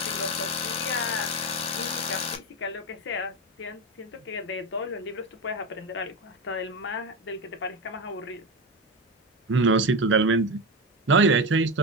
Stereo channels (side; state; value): both; normal; correlation 0.18